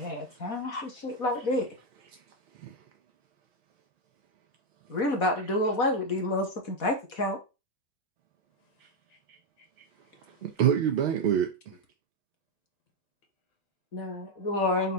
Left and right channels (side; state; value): right; late; 4.1 ms